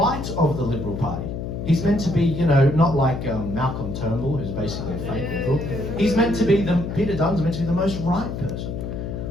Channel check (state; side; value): noise; left; hum, 5 dB below the sound